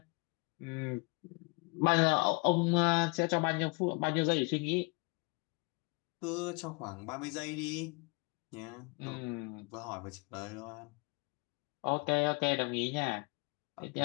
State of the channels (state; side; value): quieter; right; 30.9 dB